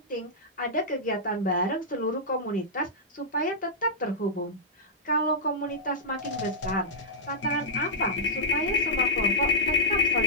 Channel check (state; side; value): normal; both; correlation -0.09